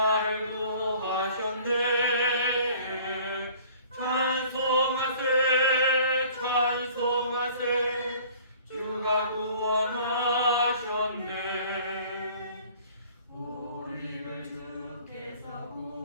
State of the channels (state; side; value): inverted; both; correlation -0.51